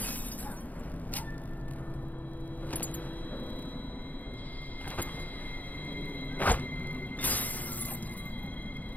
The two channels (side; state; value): right; late; 0.080 ms